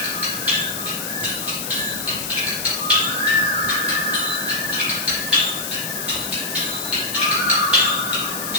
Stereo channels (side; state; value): left; noise; hiss, 5 dB below the sound